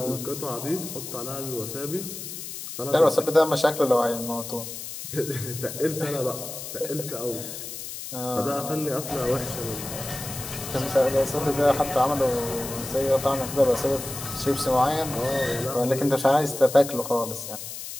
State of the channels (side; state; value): left; noise; hiss, 9 dB below the sound